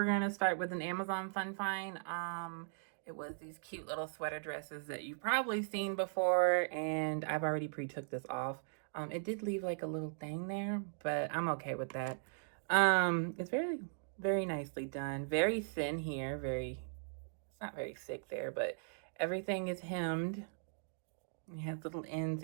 going to start with an Amazon fun find. It was these cute little sweater dresses that you've probably seen before, and I've already pre-took this off. It did leave like a little thing there, but I'm okay with that. It's very nicely done. Very thin here. It's not very thick there, but everything is hemmed. It has little ends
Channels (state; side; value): silent; left; digital silence